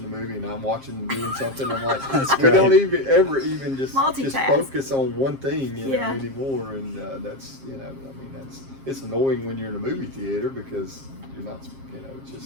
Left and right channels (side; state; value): left; late; 7.5 ms